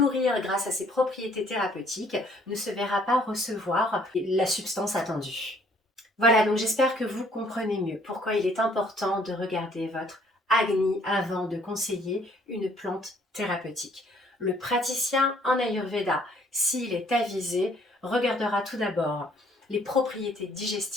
grâce à ses propriétés thérapeutiques ne se verra pas recevoir la substance attendue. Voilà, donc j'espère que vous comprenez mieux pourquoi il est important de regarder votre Agni avant de conseiller une plante thérapeutique. Le praticien en Ayurveda, s'il est avisé, regardera tout d'abord les propriétés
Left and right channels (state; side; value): normal; both; correlation 0.62